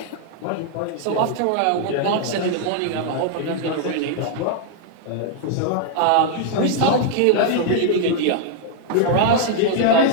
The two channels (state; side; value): different; both; correlation -0.01